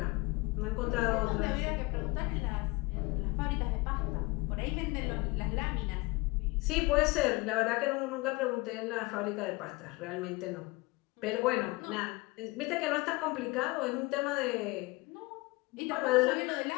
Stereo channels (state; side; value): quieter; right; 24.3 dB